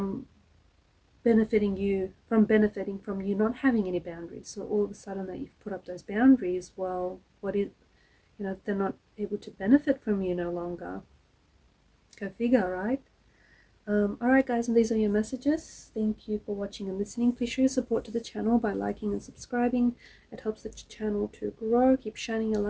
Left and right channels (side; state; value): both; identical; correlation 1.00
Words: benefiting from you not having any boundaries. So all of a sudden that you've put up those boundaries, well, they're not able to benefit from you no longer. Go figure, right? Alright guys, and these are your messages. Thank you for watching and listening. Please show your support to the channel by liking and subscribing. It helps the channel to grow. Keep shining a